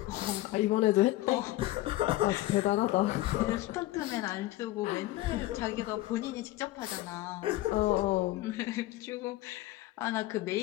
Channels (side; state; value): right; quieter; 17.0 dB